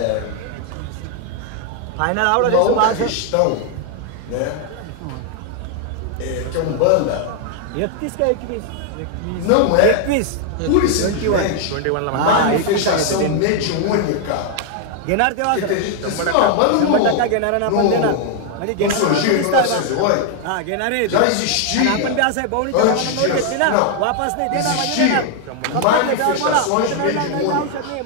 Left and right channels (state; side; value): different; both; correlation 0.00